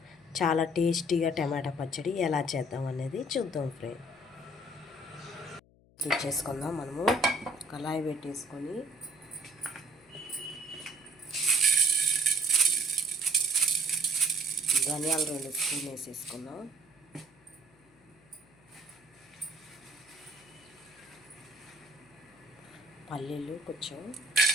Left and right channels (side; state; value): left; noise; hum, 29 dB below the sound